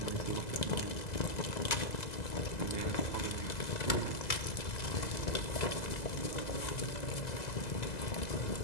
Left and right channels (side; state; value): right; late; 2.0 ms